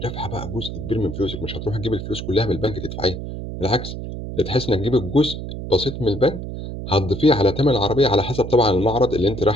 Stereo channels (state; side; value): noise; right; hum, 7 dB below the sound